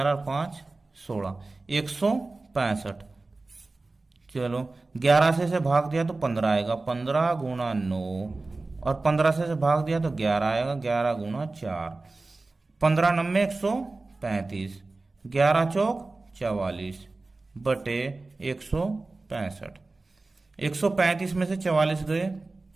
और 5 16, 165। चलो 11 से भाग दिया तो 15 आएगा, 15 गुणा 9 और 15 से भाग दिया तो 11 आएगा, 11 गुणा 4, 15 9 135, 11 चौक 44 बटे 165। 135 में से 44 गए,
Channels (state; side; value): quieter; left; 3.4 dB